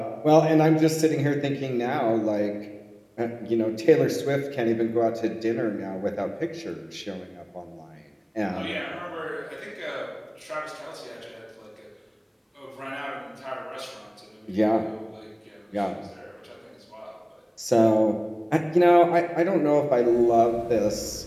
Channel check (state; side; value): identical; both; correlation 1.00